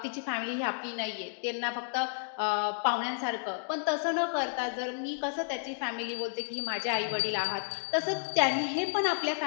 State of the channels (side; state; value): right; silent; digital silence